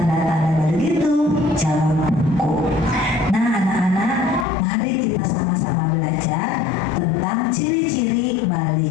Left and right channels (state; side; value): drops out; right; at 4.5 s